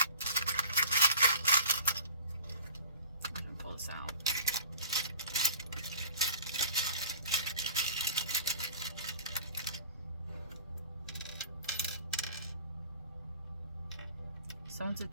I'm gonna pull this out. Someone's a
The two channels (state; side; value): inverted; both; correlation -0.44